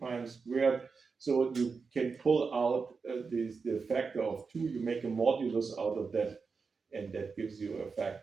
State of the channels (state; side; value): quieter; left; 5.0 dB